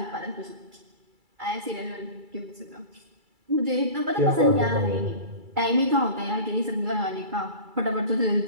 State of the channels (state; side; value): late; left; 2.3 ms